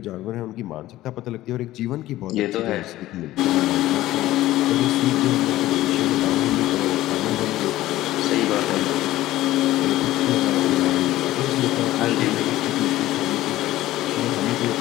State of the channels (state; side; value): quieter; right; 15.6 dB